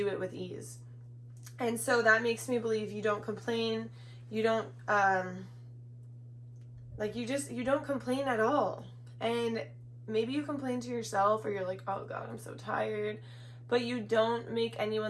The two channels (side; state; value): both; identical; correlation 1.00